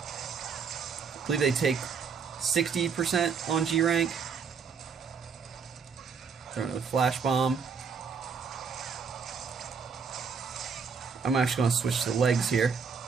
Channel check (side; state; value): left; quieter; 6.0 dB